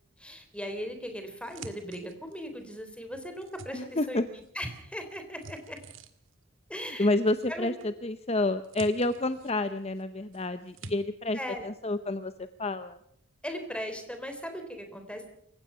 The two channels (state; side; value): normal; both; correlation 0.50